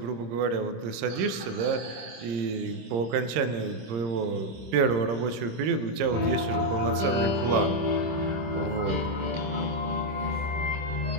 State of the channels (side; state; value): left; late; 26 ms